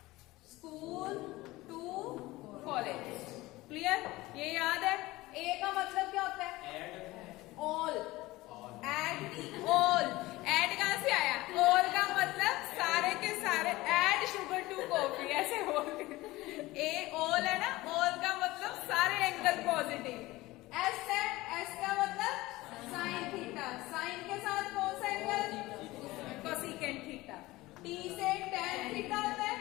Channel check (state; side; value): quieter; right; 19.2 dB